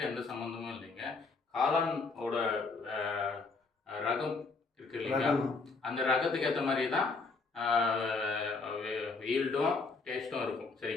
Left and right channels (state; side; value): quieter; right; 4.1 dB